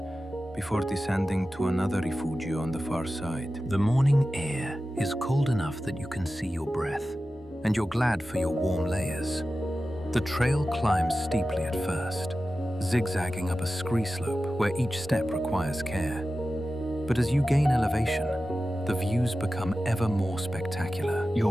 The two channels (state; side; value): normal; both; correlation 0.94